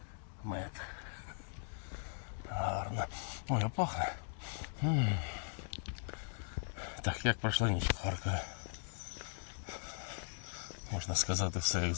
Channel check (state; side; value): silent; right; digital silence